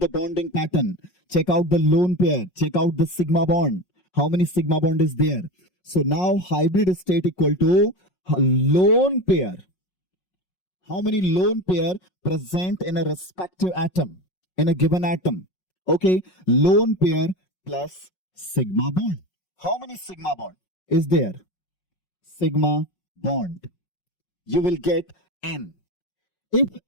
bonding pattern, check out the lone pair, check out the sigma bond. How many sigma bond is there? So now hybrid state equal to lone pair. How many lone pair present in a respective atom, in a given atom? Okay, lone pair plus sigma bond. How many sigma bond is there? Sigma bond. You will get N. If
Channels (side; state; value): right; late; 5.5 ms